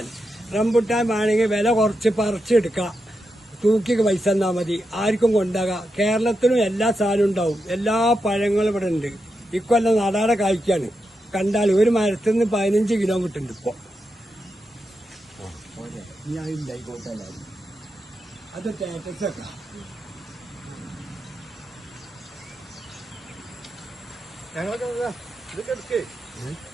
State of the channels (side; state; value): both; normal; correlation 0.86